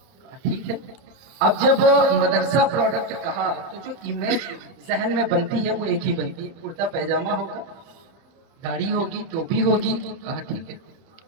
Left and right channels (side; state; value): left; late; 31 ms